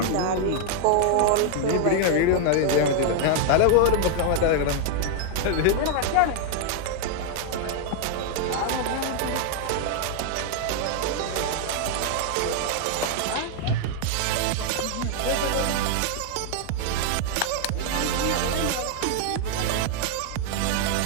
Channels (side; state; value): both; different; correlation 0.00